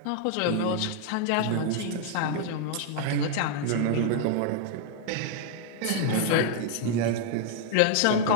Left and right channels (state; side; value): different; both; correlation 0.00